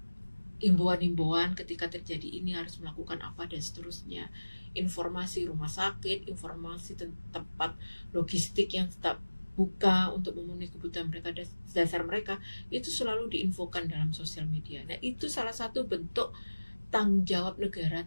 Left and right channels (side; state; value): both; inverted; correlation -1.00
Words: himbauan-himbauan ketika terjadi ini harus melakukan apa dan seterusnya. Informasi rumah sakit, informasi tempat logistik yang tetap buka untuk memenuhi kebutuhan mereka dasar mereka, itu selalu diinfokan dalam sosial media. Nah itu salah satu bentuk tanggung jawab negara